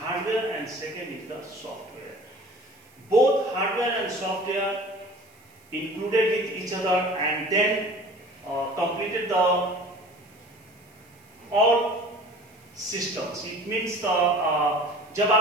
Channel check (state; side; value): noise; right; hiss, 30 dB below the sound